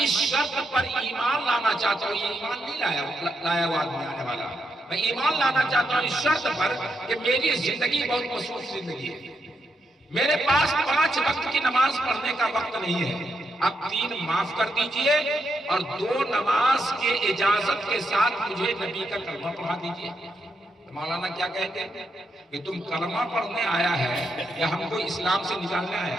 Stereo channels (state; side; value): normal; both; correlation 0.81